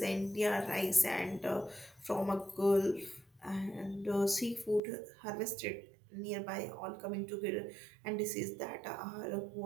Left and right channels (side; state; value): left; drops out; at 4.8 s